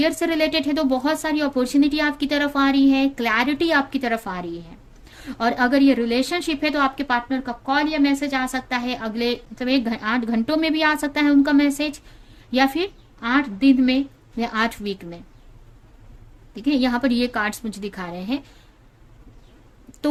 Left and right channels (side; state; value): both; identical; correlation 1.00